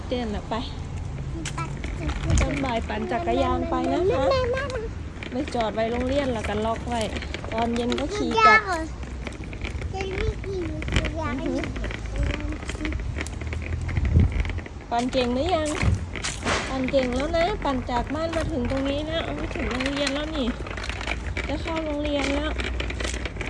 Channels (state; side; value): identical; both; correlation 1.00